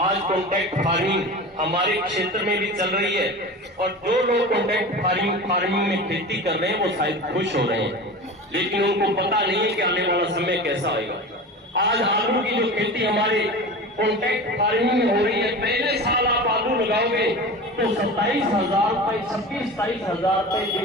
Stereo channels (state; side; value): normal; both; correlation 0.32